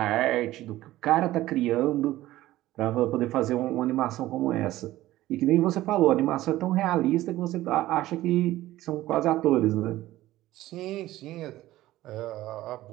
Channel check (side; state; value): left; quieter; 15.8 dB